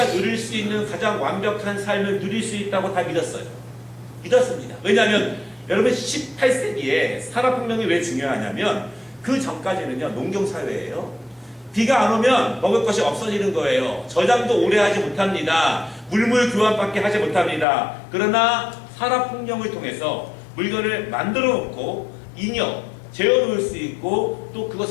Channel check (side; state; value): right; drops out; at 17.7 s